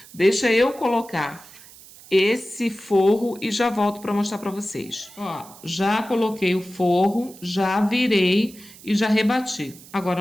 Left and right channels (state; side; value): noise; right; hiss, 21 dB below the sound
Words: Deixa eu colocar esse forro e já volto para mostrar para vocês. Ó, já coloquei o forro, já virei e já rebati.